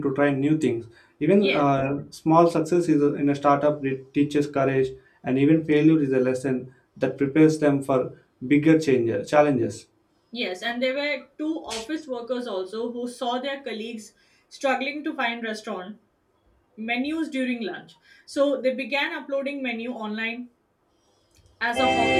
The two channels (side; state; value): both; identical; correlation 1.00